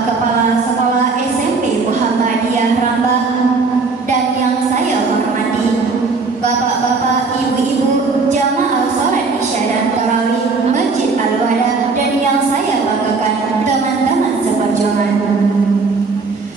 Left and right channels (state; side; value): quieter; left; 4.3 dB